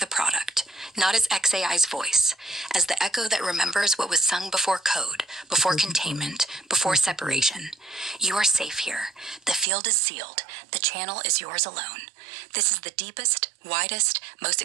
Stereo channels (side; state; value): left; drops out; at 9.7 s